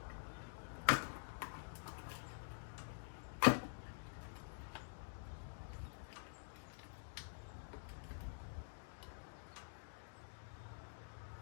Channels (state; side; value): silent; right; digital silence